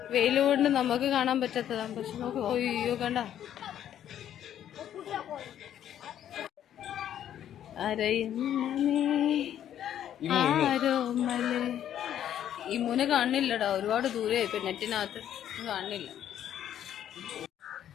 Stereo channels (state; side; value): quieter; right; 10.6 dB